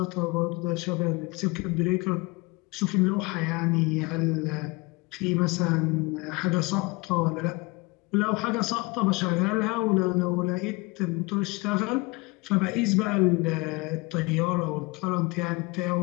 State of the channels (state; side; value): quieter; right; 25.4 dB